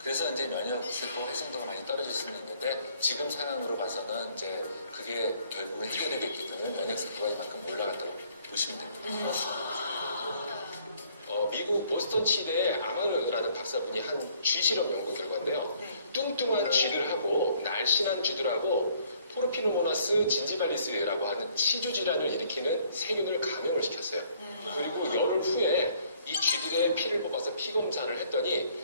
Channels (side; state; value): both; inverted; correlation -0.62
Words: 그래서 이제 면역 세포 활성도가 많이 떨어질 수는 있는데 지금 상황으로 봐서는 이제 그게 결국은 해결이 됐기 때문에 면역 세포가 이만큼 올라갔다고 보시면 됩니다. 미국 보스턴 치대의 아마르라는 박사분이 한 쥐 실험 연구 결과인데요. 뚱뚱한 쥐들 하고 날씬한 쥐들하고 포르피노모나스 진지발리스라고 하는 치주 질환을 일으키는 세균을 감염을 시켰어요. 그리고 열흘 후에 이 쥐들의 피를 뽑아서 피 검사를 했더니